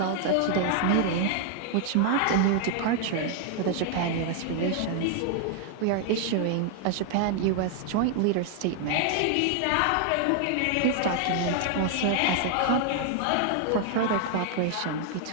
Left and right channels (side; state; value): both; different; correlation 0.00